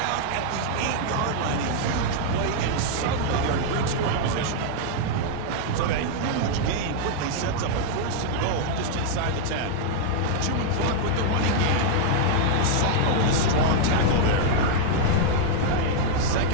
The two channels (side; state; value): both; different; correlation 0.00